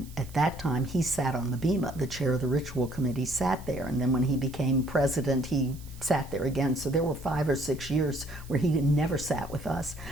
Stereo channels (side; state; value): right; noise; hiss, 22 dB below the sound